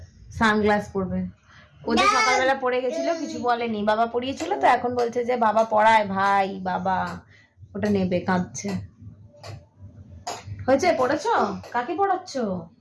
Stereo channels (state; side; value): identical; both; correlation 1.00